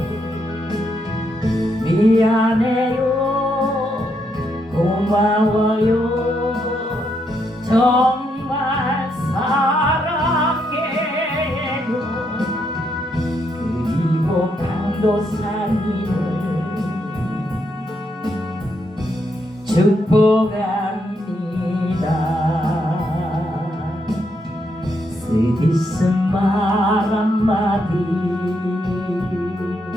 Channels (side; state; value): both; normal; correlation 0.78